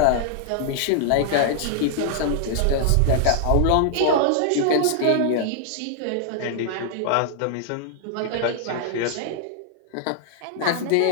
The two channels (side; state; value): both; different; correlation 0.00